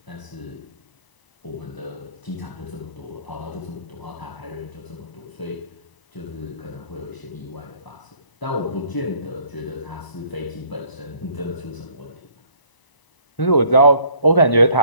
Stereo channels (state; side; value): late; right; 1.0 ms